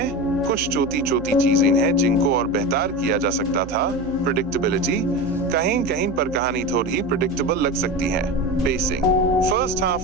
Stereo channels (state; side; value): noise; right; hum, 14 dB below the sound